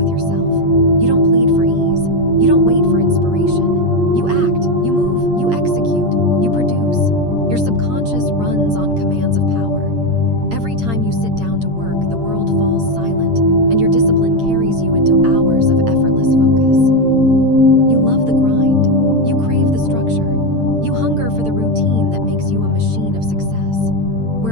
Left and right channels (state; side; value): late; left; 8.8 ms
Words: yourself. You don't plead for ease. You don't wait for inspiration. You act, you move, you execute, you produce. Your subconscious runs on commands of power. Every time you sit down to work, the world falls silent, and your discipline carries you into hours of effortless focus. You love the grind. You crave the structure. You hunger for the routine that makes you a machine of success.